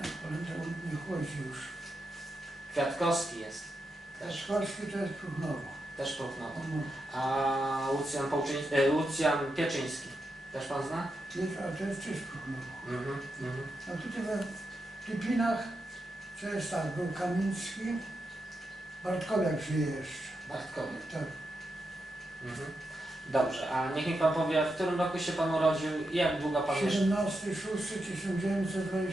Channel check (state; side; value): normal; both; correlation 0.86